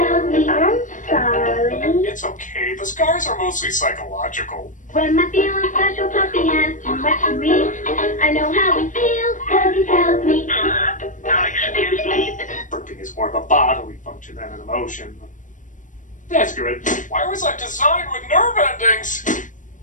me I'm sorry. It's okay. The scars are mostly psychological. When my feeling special puppy has too much to me, I know how he feels, cause he tells me. Excuse me. Burping is more of a bodily function than an emotion. That's good. Why was I designed with nerve endings?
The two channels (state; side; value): late; right; 0.37 ms